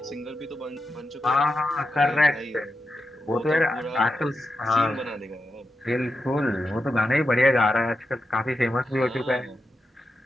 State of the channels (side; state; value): both; normal; correlation 0.88